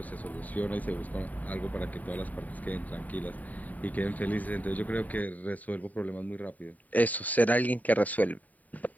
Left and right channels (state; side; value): late; right; 0.075 ms